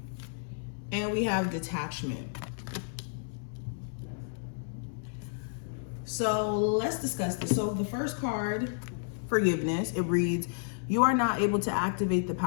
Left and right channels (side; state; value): right; silent; 57 dB below the other